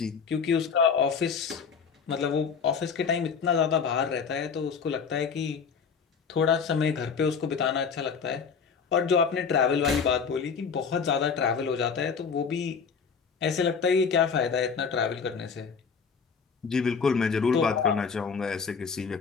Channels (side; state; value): right; quieter; 6.0 dB